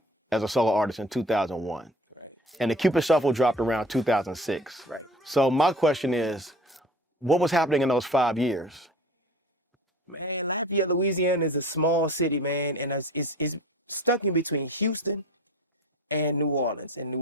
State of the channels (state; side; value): normal; both; correlation 0.42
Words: as a solo artist in 2001. Right. And the Cupid Shuffle dropped around 2006. Right. So my question is, what was happening in those 5 years? Man, Lafayette, Louisiana is a small city, man, and it's stuck in between Houston and New Orleans. And New